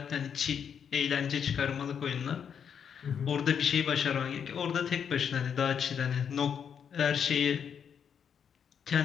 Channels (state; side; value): quieter; right; 7.6 dB